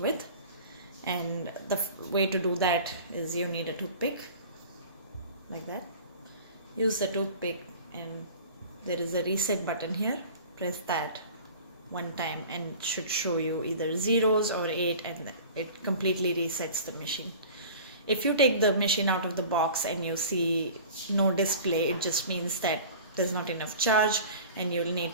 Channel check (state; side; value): inverted; both; correlation -0.41